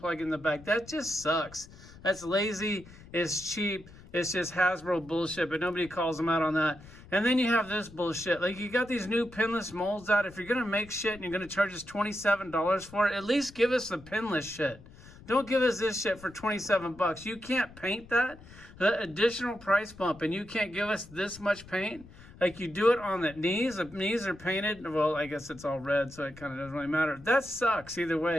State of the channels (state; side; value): noise; left; rumble, 20 dB below the sound